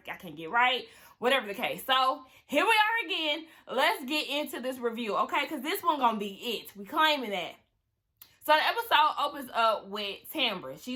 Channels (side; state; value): both; identical; correlation 1.00